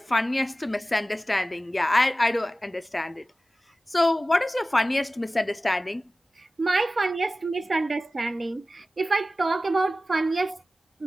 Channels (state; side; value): normal; both; correlation 0.96